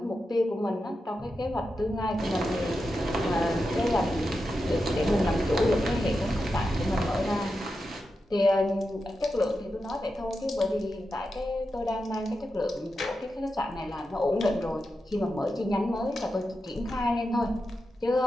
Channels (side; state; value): both; normal; correlation 0.89